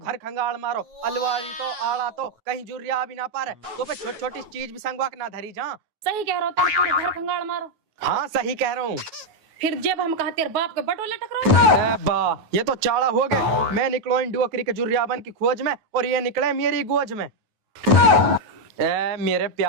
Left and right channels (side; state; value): left; late; 9.2 ms